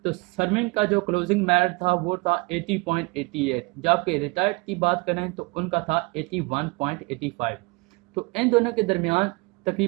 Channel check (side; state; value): left; quieter; 26.8 dB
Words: तो सर्विंग का जो क्लोजिंग मेरिट था वो था 80.88, जबकि रिटायर्ड की बात करें तो उनका था 81.85। तो इन दोनों के दरमियान